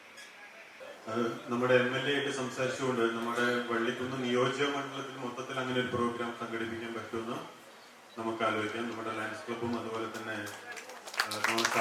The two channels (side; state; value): both; identical; correlation 1.00